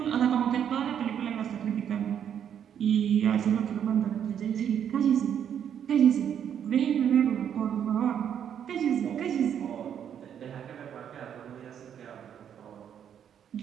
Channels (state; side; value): quieter; left; 8.9 dB